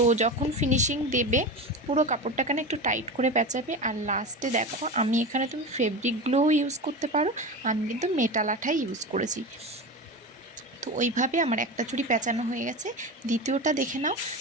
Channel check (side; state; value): both; normal; correlation 0.25